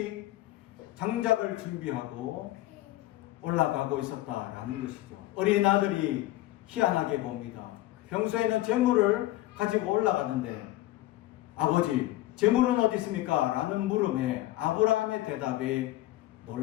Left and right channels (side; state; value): right; quieter; 16.4 dB